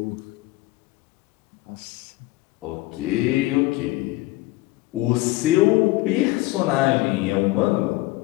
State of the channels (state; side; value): quieter; right; 19.1 dB